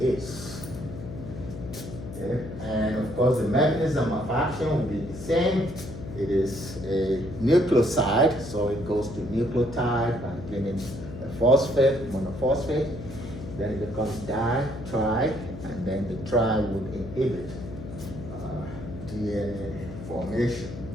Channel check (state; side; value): noise; left; hum, 11 dB below the sound